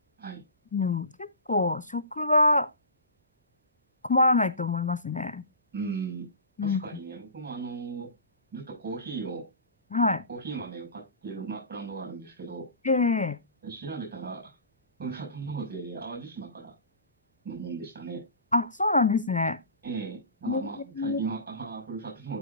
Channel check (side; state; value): both; inverted; correlation -0.35